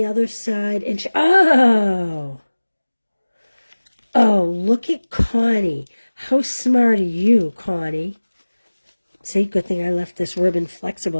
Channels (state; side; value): inverted; both; correlation -1.00